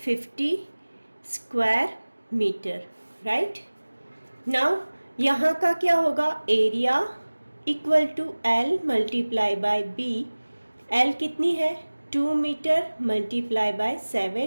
50 स्क्वायर मीटर। राइट, नाउ यहाँ का क्या होगा, area equal to L multiply by B। L कितनी है, 2 metre multiply by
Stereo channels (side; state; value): both; inverted; correlation -1.00